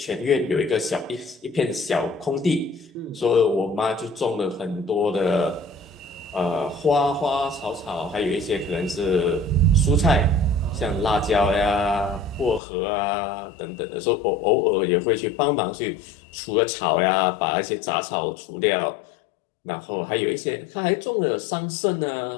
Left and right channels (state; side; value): drops out; right; at 12.6 s